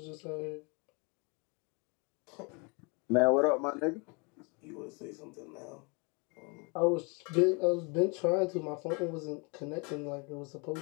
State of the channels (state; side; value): quieter; right; 31.7 dB